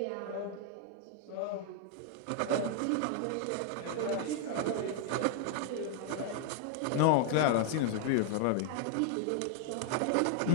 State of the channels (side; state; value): both; different; correlation 0.00